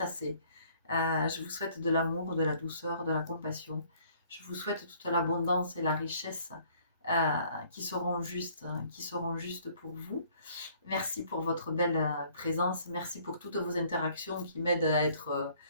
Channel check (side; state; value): both; inverted; correlation -0.59